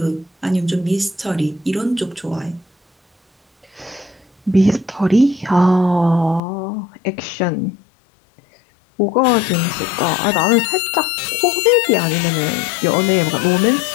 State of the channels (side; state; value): right; drops out; at 6.4 s